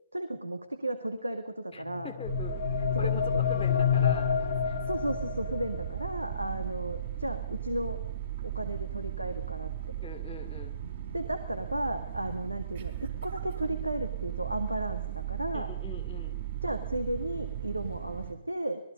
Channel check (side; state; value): both; inverted; correlation -0.60